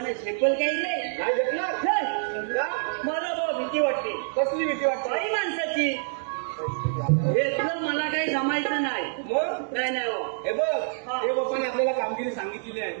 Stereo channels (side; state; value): left; silent; digital silence